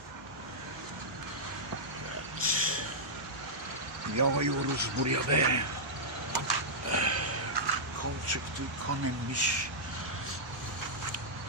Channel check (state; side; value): normal; both; correlation -0.10